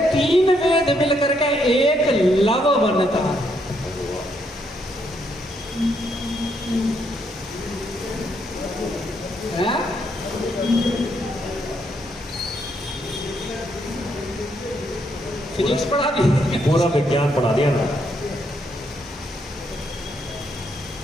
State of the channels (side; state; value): both; normal; correlation 0.75